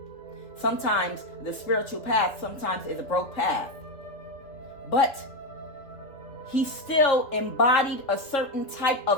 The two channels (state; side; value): late; right; 3.2 ms